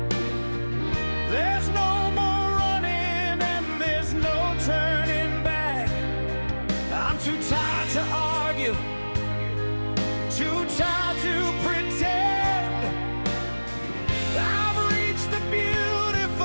There's no more running and there's no turning back. I'm too tired to argue, too tired to pretend. I've reached the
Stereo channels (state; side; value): inverted; both; correlation -1.00